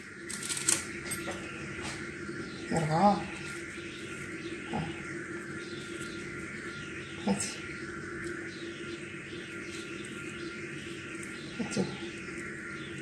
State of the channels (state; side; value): identical; both; correlation 1.00